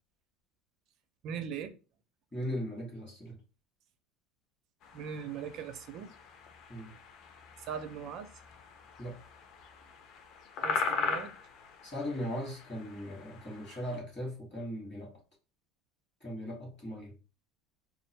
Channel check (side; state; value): both; normal; correlation 0.49